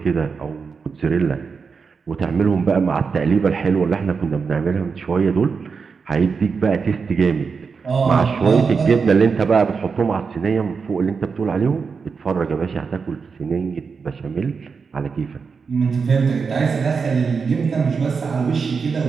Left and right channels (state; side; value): quieter; left; 5.4 dB